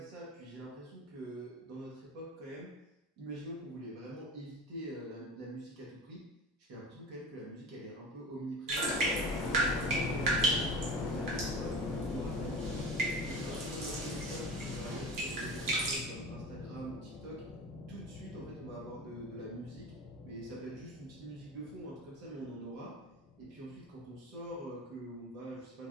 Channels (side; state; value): both; normal; correlation 0.33